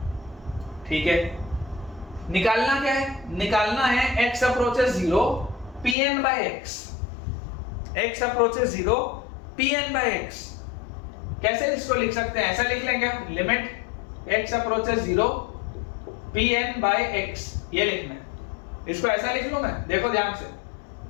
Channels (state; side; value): drops out; right; at 6.0 s